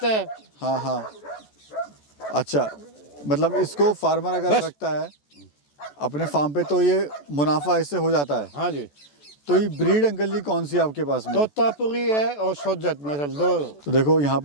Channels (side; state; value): right; late; 14 ms